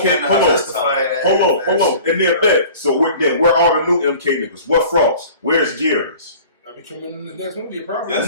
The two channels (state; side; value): inverted; both; correlation -0.45